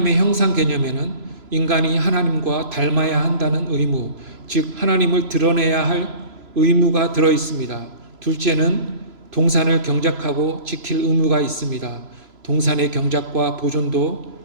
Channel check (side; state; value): left; late; 3.0 ms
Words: 형상 개념에는 인간이 하나님과 닮아야 한다는 의무, 즉 하나님을 드러내야 할 의무가 들어 있습니다. 둘째는 동산을 경작하고 지킬 의무가 있습니다. 동산의 경작과 보존도